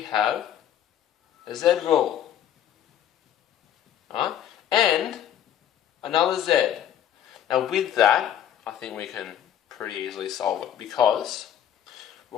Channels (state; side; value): quieter; right; 10.2 dB